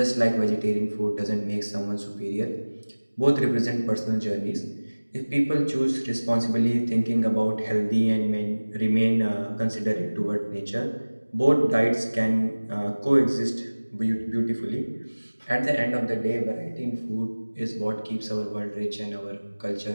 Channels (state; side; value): inverted; both; correlation -1.00